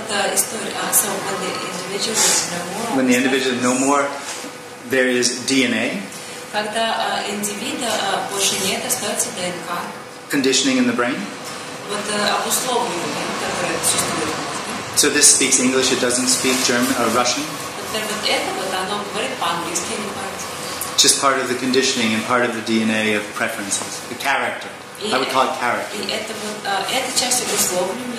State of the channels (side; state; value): both; identical; correlation 1.00